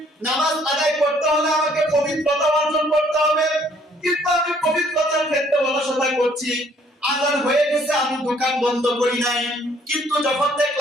নামাজ আদায় করতে হলে আমাকে পবিত্রতা অর্জন করতে হবে, কিন্তু আমি পবিত্রতার ক্ষেত্রে অলসতা করছি। আজান হয়ে গেছে, আমি দোকান বন্ধ করি নাই, কিন্তু যখন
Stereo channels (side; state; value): both; normal; correlation 0.62